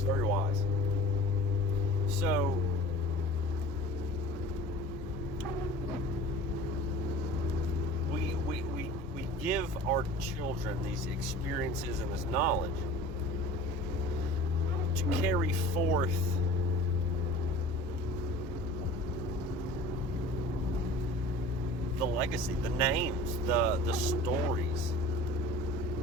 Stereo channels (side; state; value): both; normal; correlation 0.42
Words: very wise. So, we give our children these experiences and this knowledge to carry forth the legacy, the names, the stories,